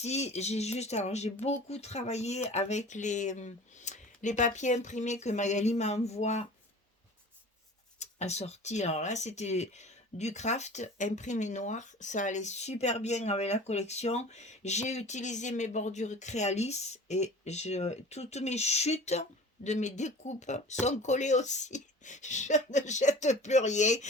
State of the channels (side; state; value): both; normal; correlation 0.41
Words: alors j'ai beaucoup travaillé avec les papiers imprimés que Magali m'envoie assortis. Alors là, c'était du craft imprimé noir. Ça allait super bien avec la collection. J'ai utilisé mes bordures Créalis et toutes mes chutes de mes découpes sont collées aussi. Je ne jette plus rien.